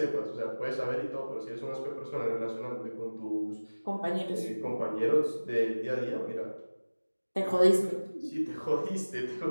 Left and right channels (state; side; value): inverted; both; correlation -1.00